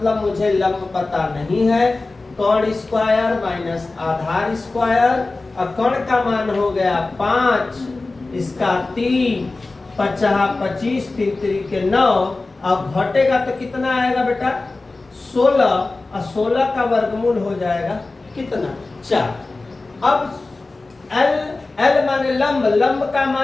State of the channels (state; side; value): quieter; right; 3.4 dB